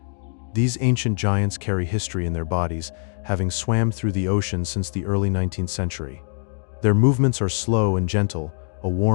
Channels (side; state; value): right; silent; digital silence